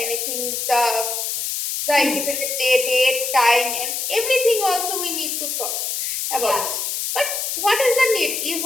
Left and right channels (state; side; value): noise; left; hiss, 2 dB below the sound